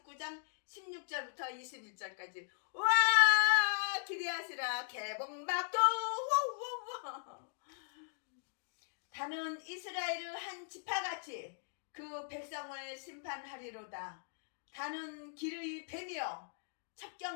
16절부터 21절까지. 와! 기대하시라. 개봉박도. 다는 이스라엘의 한 지파같이 그 백성을 심판하리로다. 다는 길의 뱀이요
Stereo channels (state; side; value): silent; right; digital silence